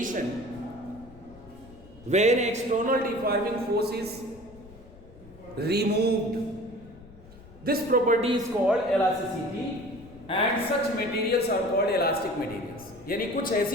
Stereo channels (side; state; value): left; noise; rumble, 21 dB below the sound